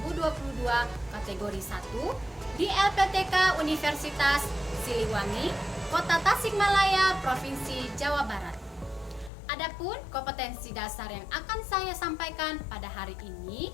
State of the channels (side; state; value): right; drops out; at 9.3 s